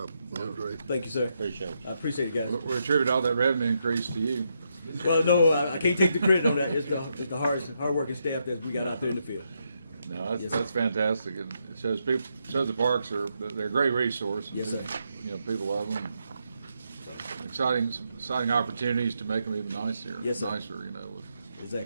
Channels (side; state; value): both; inverted; correlation -0.80